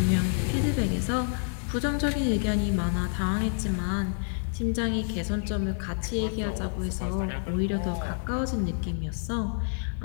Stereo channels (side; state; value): right; silent; 59 dB below the other